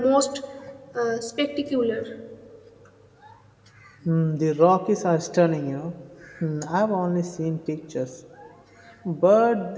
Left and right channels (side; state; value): both; identical; correlation 1.00